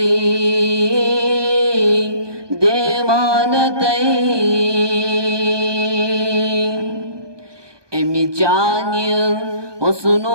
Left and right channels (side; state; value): left; late; 1.2 ms